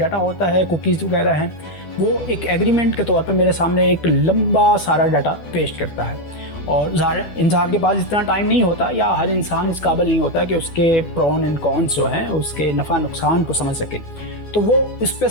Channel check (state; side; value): late; right; 12 ms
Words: ہوتا ہے، کوکیز وغیرہ ہیں، وہ ایک ایگریمنٹ کے طور پہ میرے سامنے ایک لمبا سارا ڈاٹا پیش کرتا ہے۔ اور انسان کے پاس اتنا ٹائم نہیں ہوتا، یا ہر انسان اس قابل نہیں ہوتا کہ اس کے پرون اینڈ کونس جو ہیں، اس کے نفع نقصان کو سمجھ سکے، تو وہ اس پہ